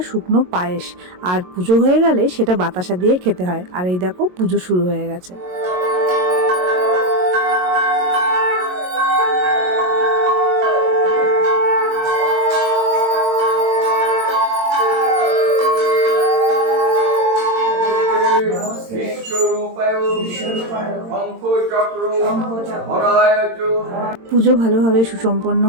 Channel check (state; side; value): late; left; 22 ms